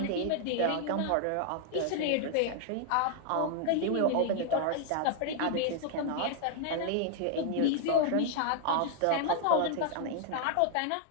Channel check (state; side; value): different; both; correlation 0.00